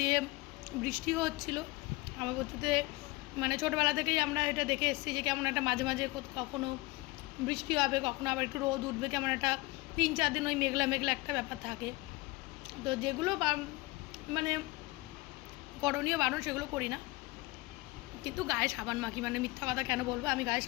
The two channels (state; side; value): quieter; right; 22.0 dB